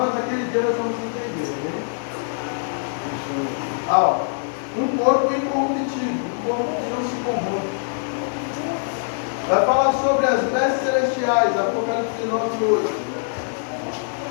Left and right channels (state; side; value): silent; right; digital silence